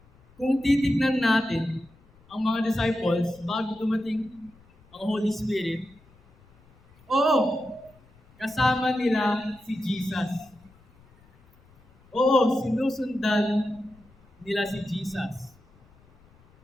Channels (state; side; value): noise; left; rumble, 29 dB below the sound